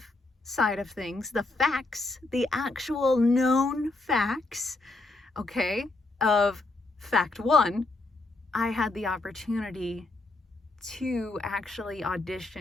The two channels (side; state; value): right; quieter; 3.2 dB